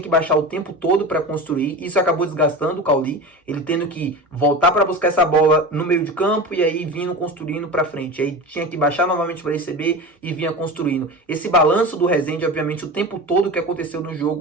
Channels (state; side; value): normal; both; correlation 0.29